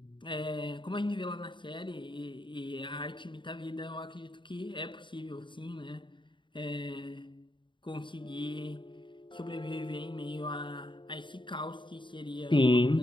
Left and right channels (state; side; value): late; right; 0.23 ms